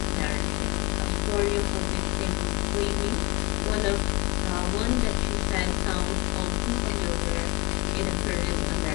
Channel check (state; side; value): quieter; right; 23.1 dB